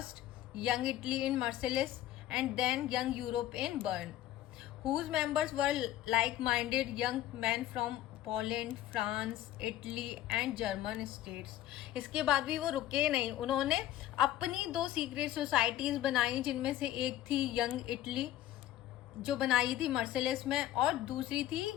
Young Italy in Marseilles and then Young Europe in Bern, whose members were like-minded young men from Poland, France, Italy and German states. इसके बाद भी वो रुके नहीं, उन्होंने अपनी 2 सीक्रेट सोसाइटीज बनाई, जिनमें से एक थी यंग इटली जो बनाई थी मर्सेलेस में, और दूसरी थी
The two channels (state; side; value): quieter; right; 13.2 dB